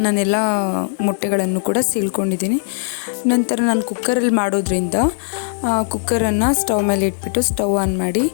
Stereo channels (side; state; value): right; silent; digital silence